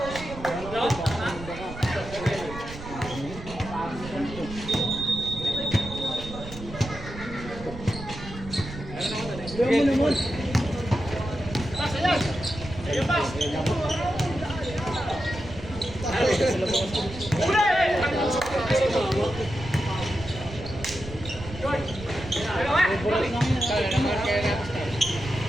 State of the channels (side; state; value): right; noise; rumble, 12 dB below the sound